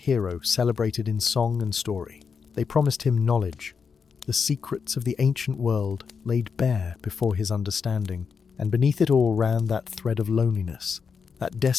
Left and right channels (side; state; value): right; quieter; 5.9 dB